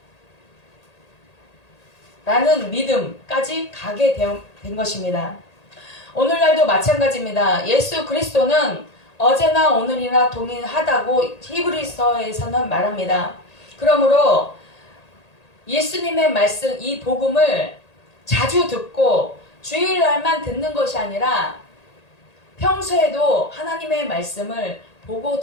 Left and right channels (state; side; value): late; right; 1.8 ms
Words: 라는 믿음까지 가게 된 것입니다. 오늘날도 마찬가지입니다. 예수 그리스도는 어제나 오늘이나 동일하다고 히브리서에서는 말합니다. 그러므로 예수님의 말씀, 이 복음을 자주 듣고 주일날만 듣는 것이 아니라 평소에도 하나님의 말씀을 보고